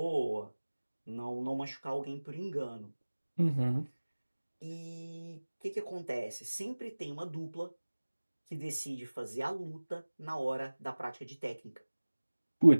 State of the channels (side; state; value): both; inverted; correlation -1.00